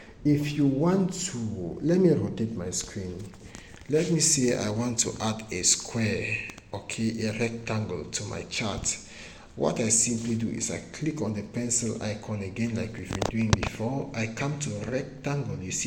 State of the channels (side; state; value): both; identical; correlation 1.00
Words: if you want to, let me rotate my screen. Let me say I want to add a square, okay, a rectangle to my chart. What I simply do is I click on the pencil icon again like we've been doing before. I come to rectangle. You